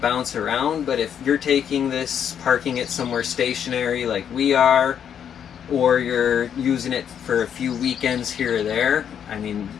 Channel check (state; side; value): quieter; right; 8.6 dB